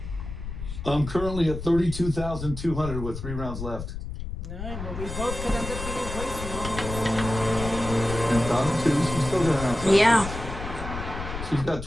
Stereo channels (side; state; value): left; noise; rumble, 7 dB below the sound